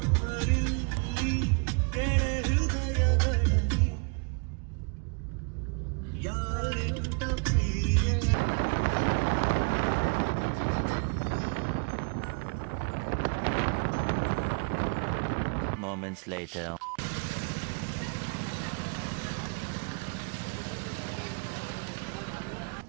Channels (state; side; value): quieter; left; 36.2 dB